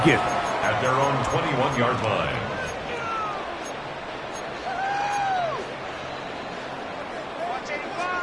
At their own 21-yard line.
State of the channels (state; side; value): identical; both; correlation 1.00